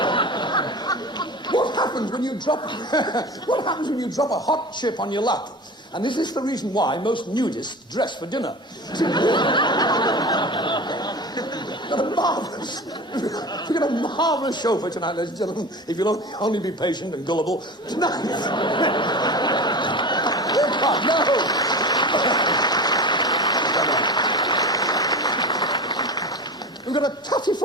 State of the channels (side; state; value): both; normal; correlation 0.31